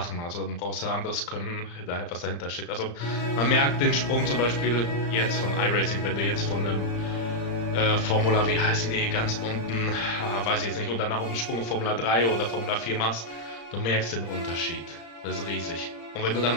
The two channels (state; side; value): late; right; 35 ms